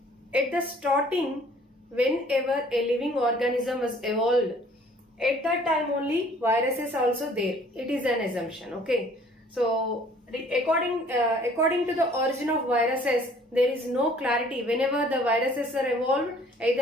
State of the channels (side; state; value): both; normal; correlation 0.56